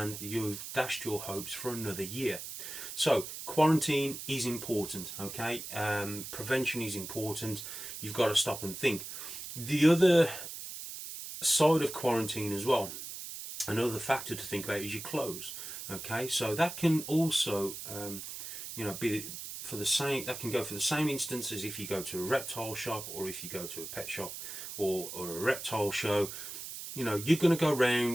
you've dashed your hopes for another year. So quarantine is important, okay? Prevention is important. You've got to stop and think. The other side of quarantine as well, another factor to think about, is your clothes. Okay, so that can also, you know, be for the same. That can go for the same instance as if you go to a reptile shop, or if you go to a pet shop, or a reptile show. You know, you're going to go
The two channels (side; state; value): right; noise; hiss, 9 dB below the sound